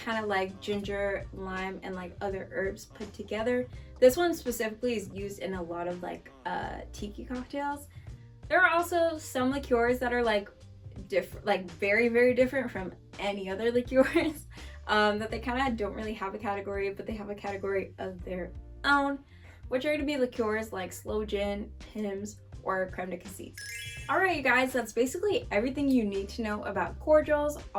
of like ginger, lime, and like other herbs put together. This one specifically is used in a lot of like tiki cocktails. There are also some liqueurs that are like different, like very, very different from any other liqueurs. That they kind of don't really have a category, but they have a category of their own, which are going to be liqueurs like sloe gin, Pimm's, or creme de cassis. Alright you guys, that's basically everything you need to know about cordials,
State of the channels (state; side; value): identical; both; correlation 1.00